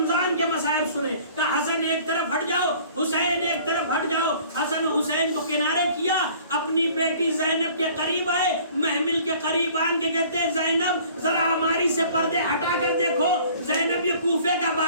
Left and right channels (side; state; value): both; inverted; correlation -0.52